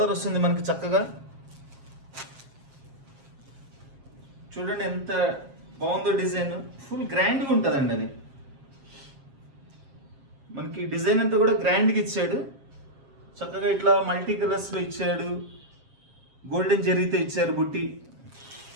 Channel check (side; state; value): left; late; 7.5 ms